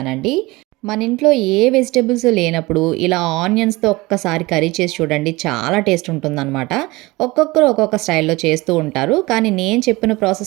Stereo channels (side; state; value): left; quieter; 21.8 dB